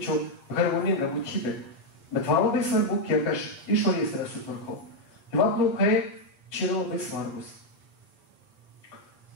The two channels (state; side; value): late; right; 8.6 ms